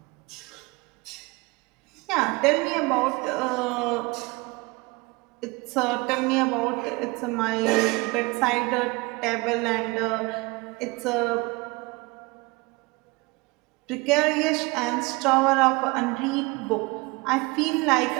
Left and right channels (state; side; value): quieter; left; 24.9 dB